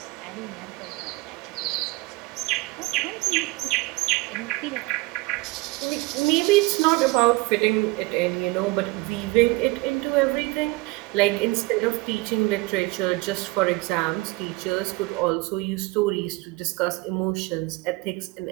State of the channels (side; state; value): left; quieter; 22.4 dB